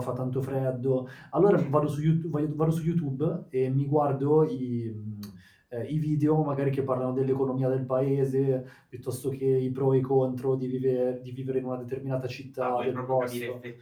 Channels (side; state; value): both; identical; correlation 1.00